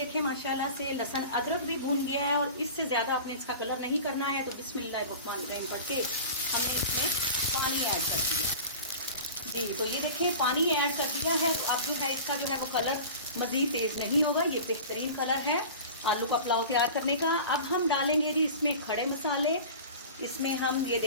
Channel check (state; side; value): inverted; both; correlation -0.36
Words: माशाल्लाह से लहसुन अदरक भी भून गया है और इससे ज़्यादा आपने इसका कलर नहीं करना है। तो बिस्मिल्लाहिर्रहमानिर्रहीम पढ़ के हमने इसमें पानी ऐड कर दिया जी। तो ये देखें, पानी ऐड कर दिया है। तो अब जो है इसका जो है वो कलर मज़ीद तेज़ नहीं होगा, ये बेहतरीन कलर है आलू का पुलाव तैयार करने का। अब हम डालेंगे जी इसमें खड़े मसाले। इसमें हम ये